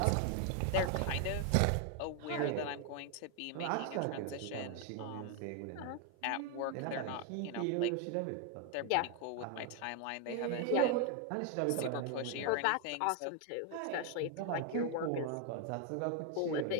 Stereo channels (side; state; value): both; different; correlation 0.01